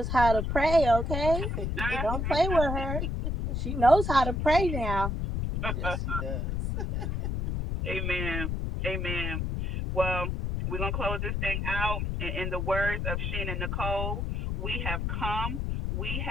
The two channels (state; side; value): noise; left; rumble, 1 dB below the sound